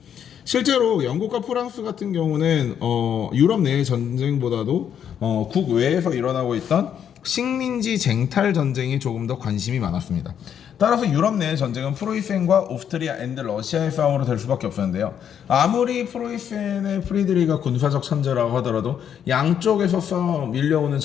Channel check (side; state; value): right; quieter; 8.8 dB